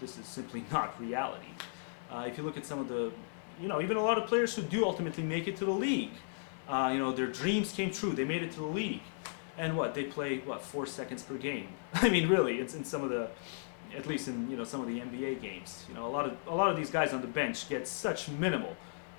this is simply not reality. If you look at some of the, even a lot of players who do ultimately make it to the league, their dreams came true. They made it to the league, and they play 4 seconds per game. I mean, really, it's in some of the, at least in some of the NBA games. A lot of these guys on the bench get such minimal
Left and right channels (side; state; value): right; silent; digital silence